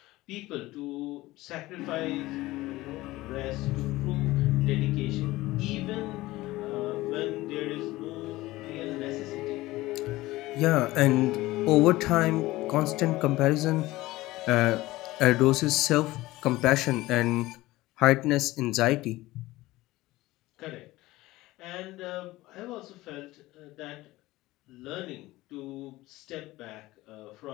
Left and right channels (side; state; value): right; quieter; 18.4 dB